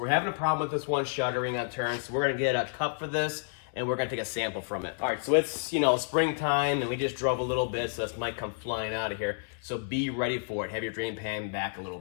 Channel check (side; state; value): right; silent; 55 dB below the other